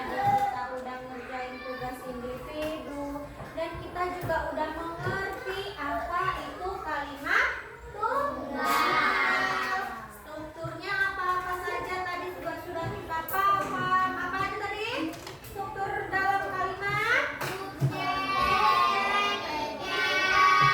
kita udah ngerjain tugas individu, dan kita juga udah mengerti apa itu kalimat tunggal. Strukturnya apa-apa saja tadi juga sudah kita paham. Apa aja tadi? Struktur dalam kalimat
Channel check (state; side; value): identical; both; correlation 1.00